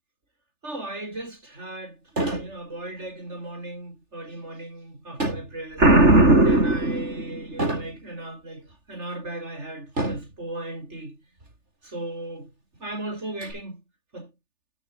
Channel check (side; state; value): left; late; 3.4 ms